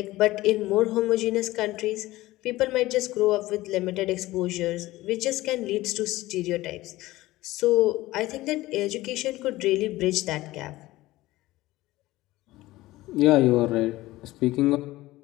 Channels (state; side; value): quieter; right; 17.8 dB